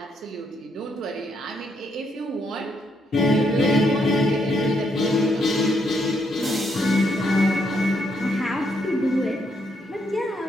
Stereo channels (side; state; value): both; normal; correlation 0.76